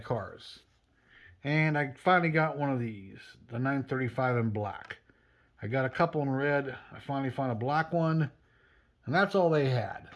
cars. And I finally got one of these, the 935 in black. I got a couple in red. I finally found a black one, and that's all they had.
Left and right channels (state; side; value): identical; both; correlation 1.00